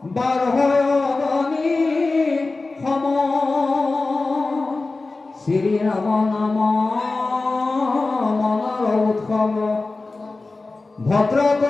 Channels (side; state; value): right; quieter; 3.5 dB